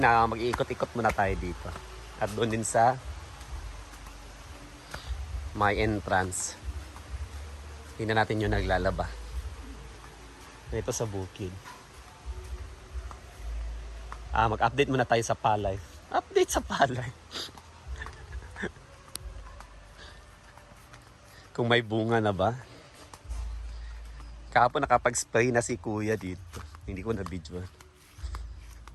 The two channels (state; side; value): identical; both; correlation 1.00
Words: mag-iikot-ikot muna tayo dito. At doon din sa my entrance. Tingnan natin yung naglalaba. Ito sa bukid. Mag-update muna tayo sa palay. Update sa palay. Kung may bunga na ba? Kahapon nakapag-spray na si kuya dito. Hindi ko na-videoan.